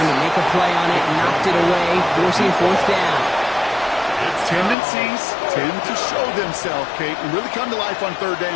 to make a play on it, knocked it away, forcing fourth down. Tendencies tend to show themselves, Kate, and really come to life on third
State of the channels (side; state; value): right; drops out; at 4.8 s